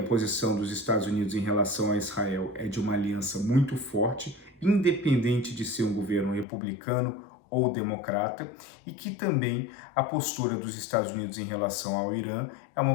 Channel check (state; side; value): drops out; right; at 6.5 s